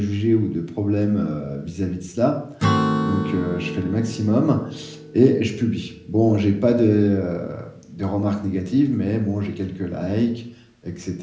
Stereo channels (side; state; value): both; identical; correlation 1.00